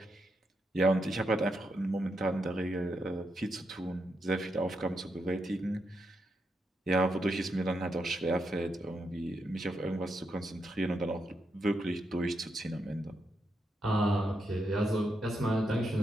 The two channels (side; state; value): both; normal; correlation 0.82